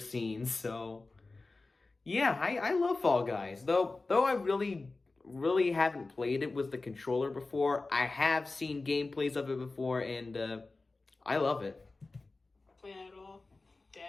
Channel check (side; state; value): right; quieter; 3.5 dB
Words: so... Yeah, I love Fall Guys. Though I really haven't played it with the controller before. I have seen gameplays of it before, and I love it. Play it at all.